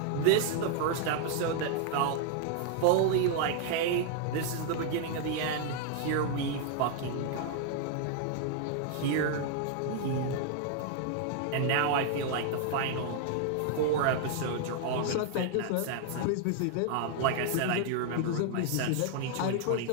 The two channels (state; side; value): different; both; correlation 0.00